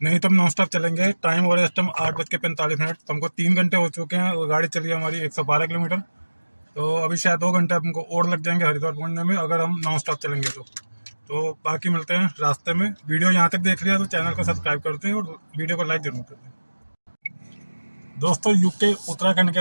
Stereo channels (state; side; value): inverted; both; correlation -1.00